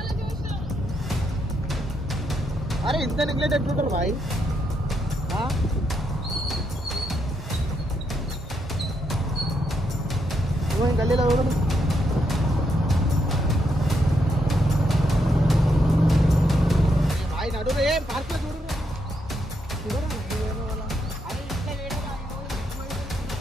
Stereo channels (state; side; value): normal; both; correlation 0.78